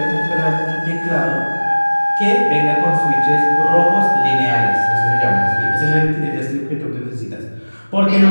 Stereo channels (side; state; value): both; inverted; correlation -1.00